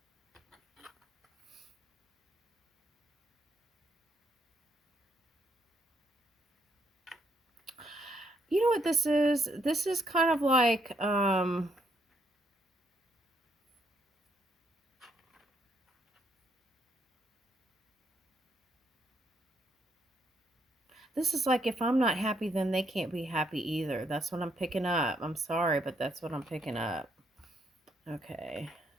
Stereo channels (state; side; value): normal; both; correlation 0.73